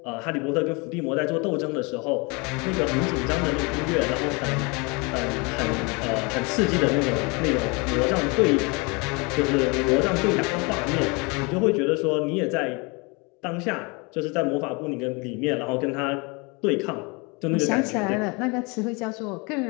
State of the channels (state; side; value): quieter; right; 29.1 dB